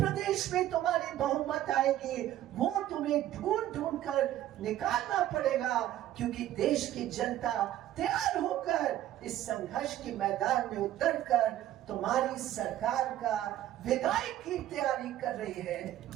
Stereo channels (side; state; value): left; quieter; 13.0 dB